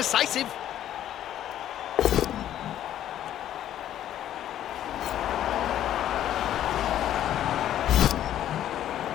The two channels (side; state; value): right; quieter; 11.6 dB